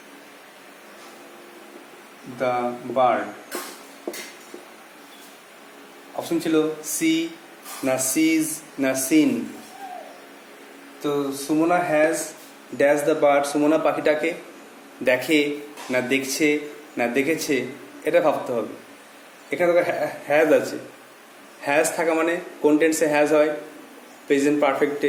the bird. Option ছিল সি না সিজ না সিন। তো Sumana has dash the bird, Sumana পাখিটাকে দেখে না দেখছে না দেখেছে, এটা ভাবতে হবে। এখানে তো হ্যাজ আছে, হ্যাজ থাকা মানে কোন টেন্সে হ্যাজ হয়? প্রেজেন্ট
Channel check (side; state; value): both; identical; correlation 1.00